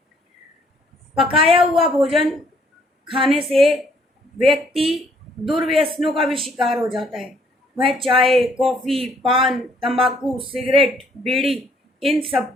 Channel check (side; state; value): both; normal; correlation 0.65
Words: पकाया हुआ भोजन खाने से व्यक्ति दुर्व्यसनों का भी शिकार हो जाता है। वह चाय, कॉफ़ी, पान, तंबाकू, सिगरेट, बीड़ी इन